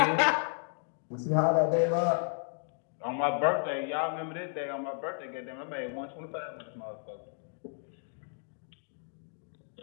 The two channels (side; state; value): right; silent; 56 dB below the other